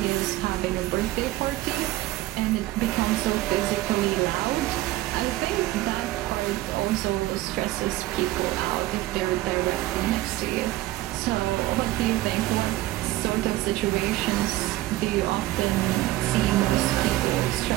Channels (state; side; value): quieter; left; 16.7 dB